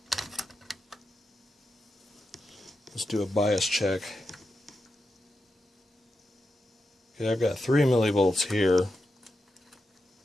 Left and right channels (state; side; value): normal; both; correlation 0.88